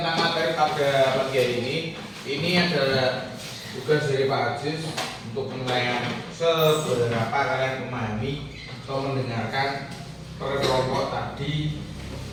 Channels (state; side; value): identical; both; correlation 1.00